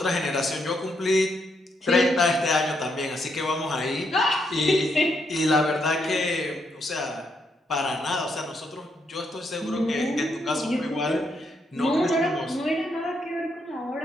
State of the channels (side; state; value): both; normal; correlation 0.77